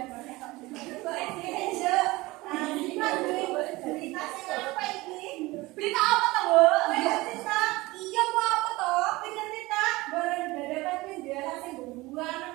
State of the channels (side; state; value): left; quieter; 20.9 dB